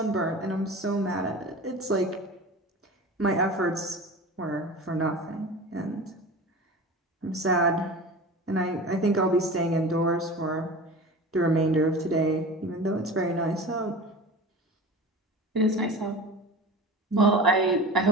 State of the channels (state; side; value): normal; both; correlation 0.34